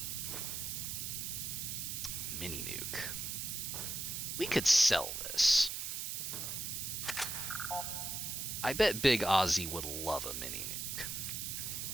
Mini nuke. We could sell this. I bet Big Ozzy would love a mini nuke.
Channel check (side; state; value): right; noise; hiss, 3 dB below the sound